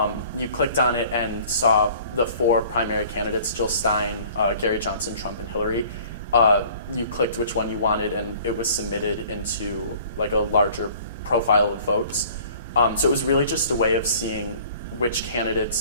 You clicked on it and saw the four primary candidates, Jill Stein, Gary Johnson, Trump, and Hillary. You clicked which one you wanted and it was submitted into like a larger profile of votes. So it was really just a way of seeing which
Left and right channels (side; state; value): both; inverted; correlation -0.50